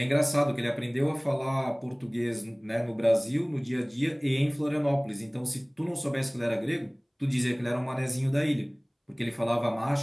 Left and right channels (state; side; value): identical; both; correlation 1.00